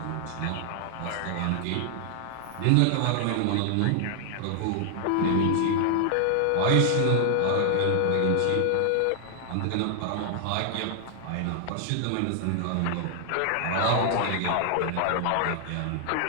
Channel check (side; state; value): both; different; correlation 0.00